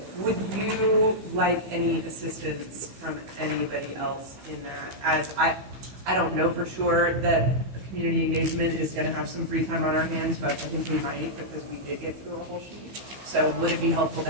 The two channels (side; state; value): left; late; 15 ms